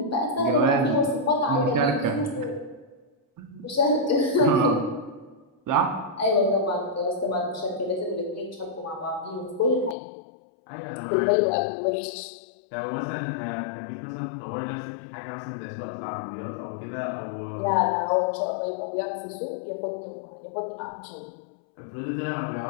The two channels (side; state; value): right; drops out; at 10.0 s